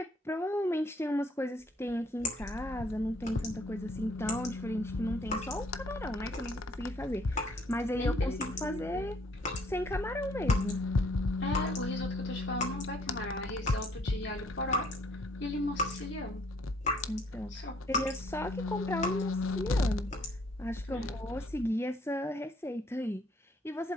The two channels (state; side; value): normal; both; correlation 0.63